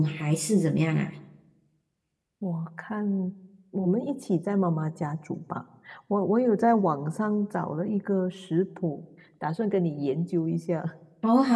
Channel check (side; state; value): both; identical; correlation 1.00